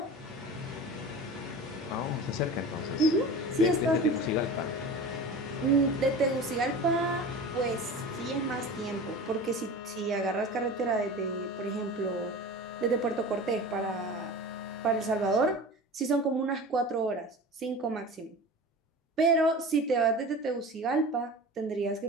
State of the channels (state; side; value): normal; both; correlation 0.34